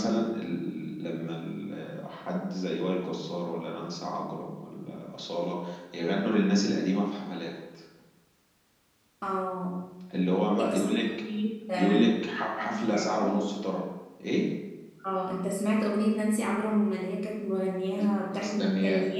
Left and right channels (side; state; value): both; identical; correlation 1.00